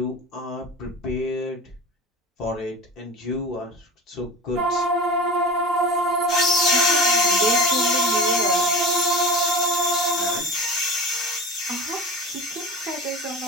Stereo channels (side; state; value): both; normal; correlation 0.31